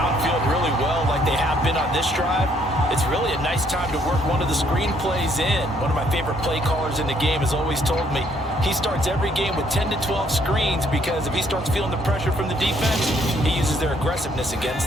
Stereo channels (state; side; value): normal; both; correlation 0.67